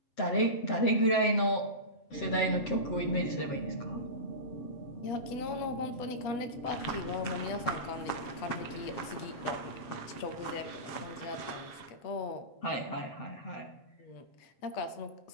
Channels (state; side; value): late; right; 7.7 ms